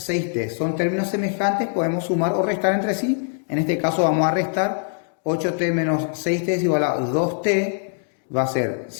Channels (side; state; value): right; silent; digital silence